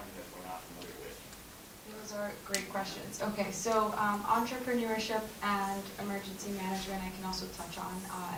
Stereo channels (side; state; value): both; identical; correlation 1.00